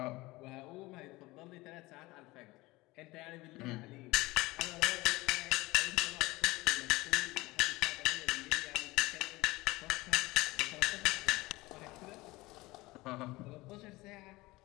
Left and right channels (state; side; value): quieter; right; 20.8 dB